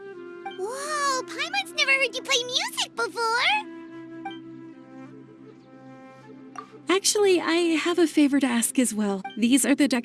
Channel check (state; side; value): identical; both; correlation 1.00